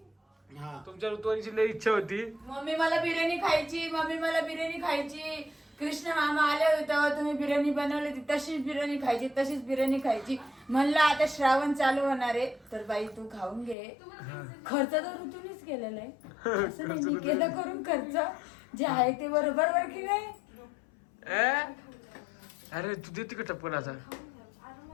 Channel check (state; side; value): drops out; right; at 13.8 s